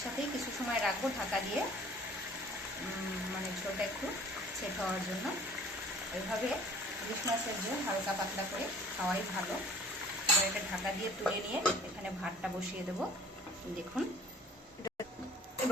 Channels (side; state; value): both; normal; correlation 0.49